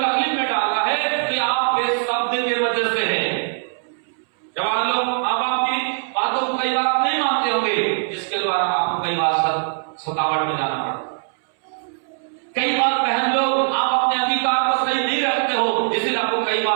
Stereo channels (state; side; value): silent; left; 65 dB below the other